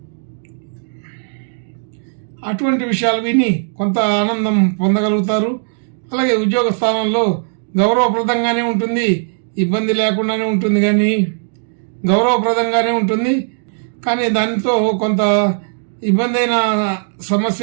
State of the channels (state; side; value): silent; left; digital silence